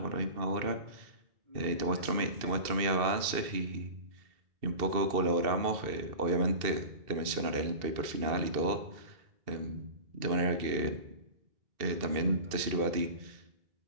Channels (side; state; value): left; late; 2.6 ms